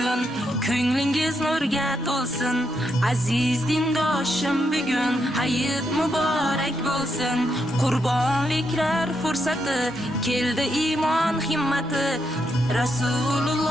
ko'nglingiz nurga to'lsin. Aziz dindoshim, bugun hayit muborak bo'lsin. Qurbonliklar fursati, keldi iymon himmati.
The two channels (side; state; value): both; normal; correlation 0.80